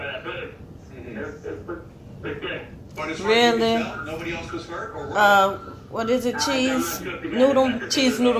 that bridge. It was pretty good. But as far as you can tell, nobody else was hurt? Or what is it? Cheese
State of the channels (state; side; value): identical; both; correlation 1.00